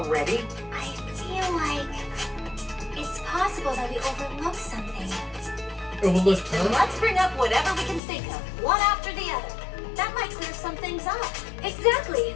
I feel like it's possible that we overlooked something. Overlooked, huh? Let's bring up whatever we can think of, one after the other. That might clear some things up. Exactly.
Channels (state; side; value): drops out; right; at 8.0 s